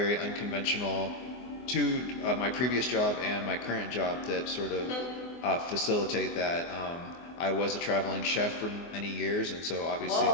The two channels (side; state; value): right; late; 24 ms